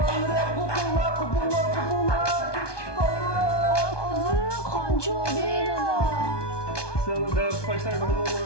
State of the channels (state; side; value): late; right; 1.2 ms